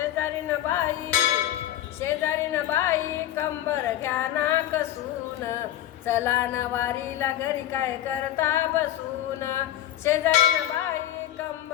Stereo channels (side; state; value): right; quieter; 12.6 dB